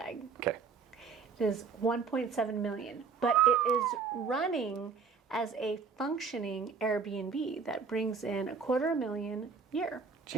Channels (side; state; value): left; quieter; 5.4 dB